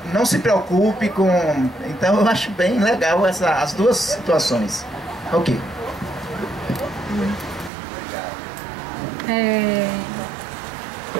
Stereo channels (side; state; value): left; drops out; at 7.7 s